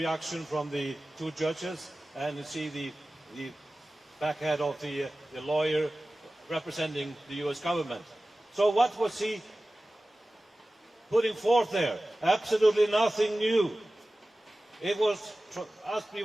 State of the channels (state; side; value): normal; both; correlation 0.96